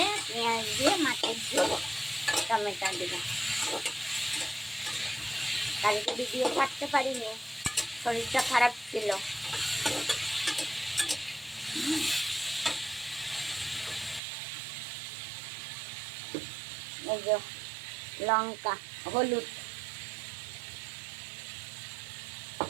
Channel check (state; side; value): drops out; left; at 14.2 s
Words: পেঁয়াজ দিয়ে মাছের ঝোল টমেটো দিয়ে। কালকে ভিডিও ছাড়তে পারিনি, শরীরটা খারাপ ছিল। এই যে লঙ্কা, হলুদ,